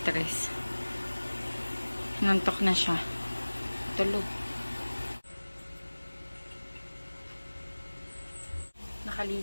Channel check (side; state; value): both; inverted; correlation -1.00